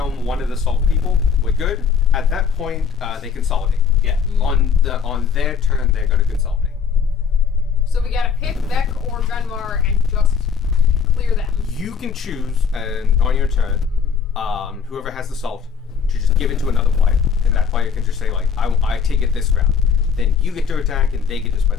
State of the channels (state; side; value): quieter; right; 6.4 dB